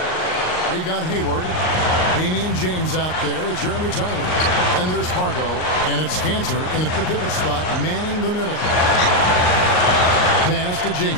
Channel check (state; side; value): late; right; 38 ms